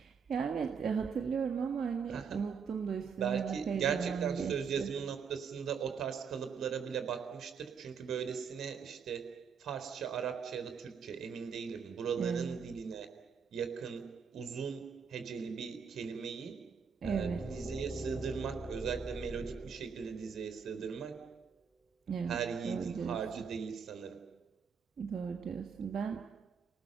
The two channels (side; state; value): left; quieter; 6.2 dB